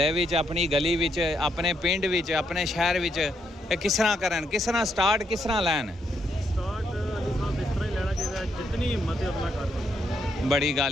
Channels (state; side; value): normal; both; correlation 0.77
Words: ਵਿੱਚ ਆਪਣੀ ਗਲੀ ਵਿੱਚ ਆਪਣੇ ਪਿੰਡ ਵਿੱਚ ਆਪਣੇ ਸ਼ਹਿਰ ਵਿੱਚ ਇਹ ਕਿਸ ਤਰ੍ਹਾਂ ਕਰਨ ਕਿਸ ਤਰ੍ਹਾਂ ਸਟਾਰਟ ਕਿਸ ਤਰ੍ਹਾਂ ਲੈਣ? ਸਟਾਰਟ ਅਲੀ ਸਾਹਿਬ ਇਸ ਤਰ੍ਹਾਂ ਹੀ ਲੈਣਾ ਚਾਹੀਦਾ ਜਿੰਨੀ ਹਿੰਮਤ ਹੈ ਆਪਣਾ ਕਰ। ਬੜੀ